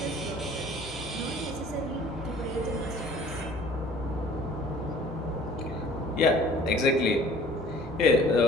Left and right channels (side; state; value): both; normal; correlation 0.51